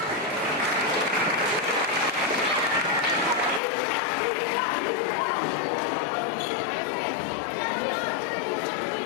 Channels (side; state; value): right; drops out; at 3.6 s